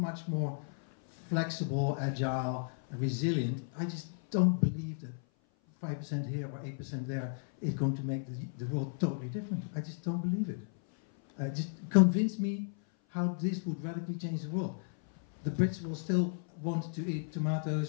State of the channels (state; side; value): silent; right; 55 dB below the other